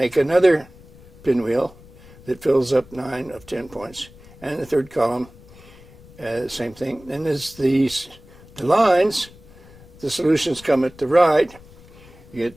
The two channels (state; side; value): noise; left; rumble, 23 dB below the sound